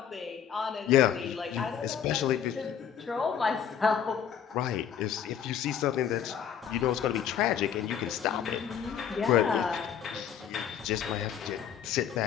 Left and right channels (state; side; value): quieter; right; 8.5 dB